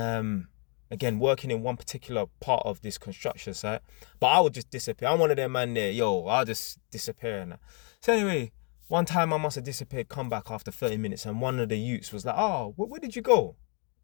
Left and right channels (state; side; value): quieter; right; 35.2 dB